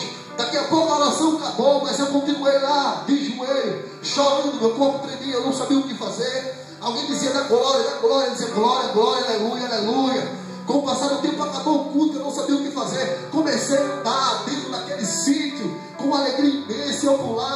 Daqui a pouco a oração acabou, mas eu continuei lá, de joelho, chorando, meu corpo tremia, eu não sabia o que fazer. Alguém dizia: da glória, eu dizia: glória, glória, aleluia, aleluia. Com o passar do tempo, acabou o culto, eu não sabia o que fazer. Comecei a andar dentro daquele sítio, com uma alegria imensa. Eu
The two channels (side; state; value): both; identical; correlation 1.00